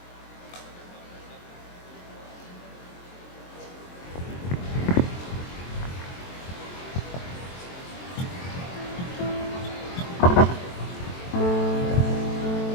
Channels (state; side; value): late; right; 23 ms